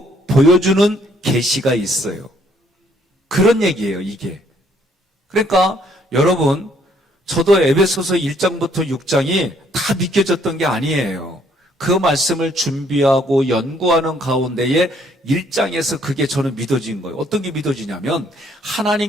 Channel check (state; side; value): normal; both; correlation 0.66